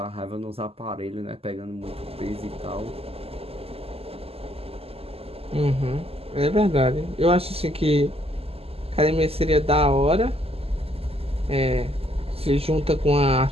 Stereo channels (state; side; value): late; left; 0.29 ms